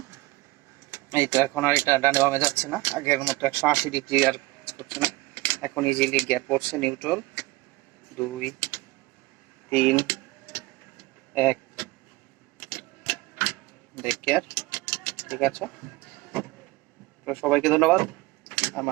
এই তো এখন আর এটা ডানে বামে যাচ্ছে না, আগের মতো 180 ডিগ্রি আর কাজ করছে না। এখন ইজিলি গিয়ার পড়ছে নিউট্রাল, 2 3 1 ব্রেক গিয়ার। ঠিক আছে, তো সবাইকে ধন্যবাদ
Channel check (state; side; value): quieter; left; 20.8 dB